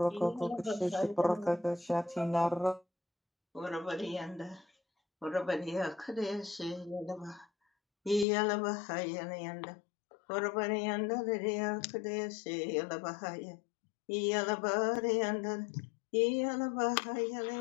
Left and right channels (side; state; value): right; drops out; at 8.2 s